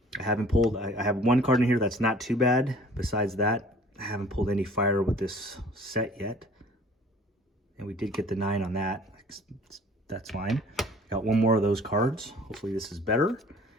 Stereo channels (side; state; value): both; normal; correlation 0.51